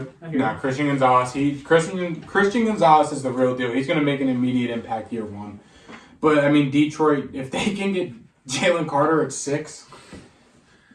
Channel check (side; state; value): both; identical; correlation 1.00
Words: Christian Gonzalez. Christian Gonzalez is the real deal. He's going to make an immediate impact year 1. But I mean, Detroit, if they can get Jalen Carter at 6,